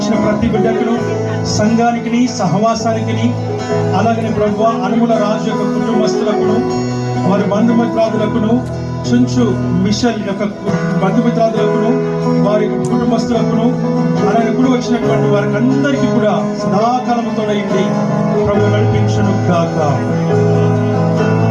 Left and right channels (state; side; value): identical; both; correlation 1.00